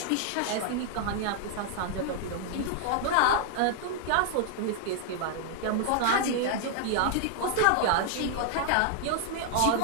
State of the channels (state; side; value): different; both; correlation 0.00